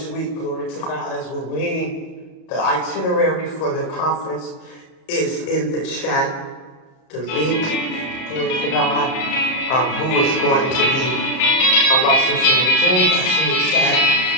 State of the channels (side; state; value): right; late; 34 ms